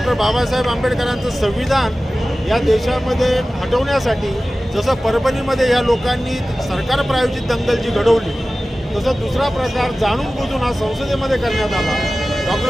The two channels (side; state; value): both; normal; correlation 0.96